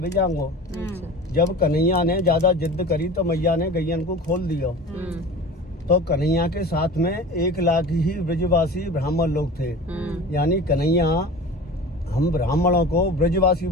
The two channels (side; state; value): both; normal; correlation 0.36